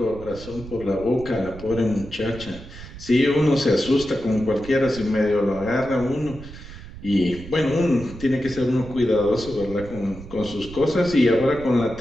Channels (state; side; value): noise; right; rumble, 14 dB below the sound